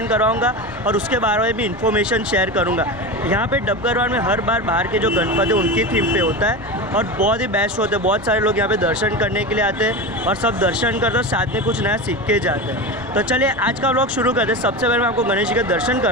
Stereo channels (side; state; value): both; normal; correlation 0.24